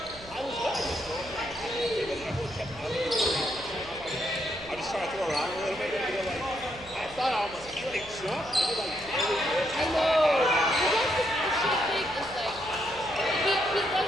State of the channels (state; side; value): noise; right; hum, 19 dB below the sound